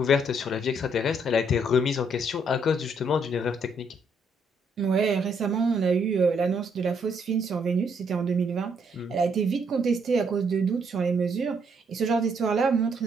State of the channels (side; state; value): both; normal; correlation 0.71